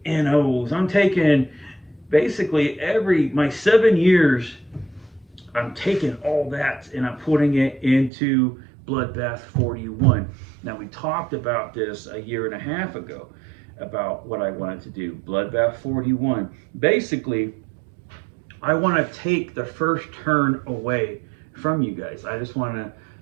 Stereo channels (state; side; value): drops out; left; at 8.1 s